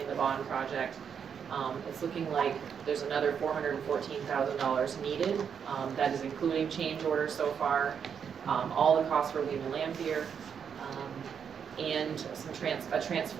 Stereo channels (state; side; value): quieter; left; 7.3 dB